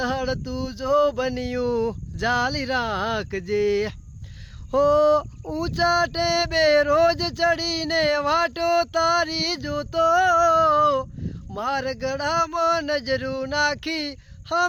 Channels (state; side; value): identical; both; correlation 1.00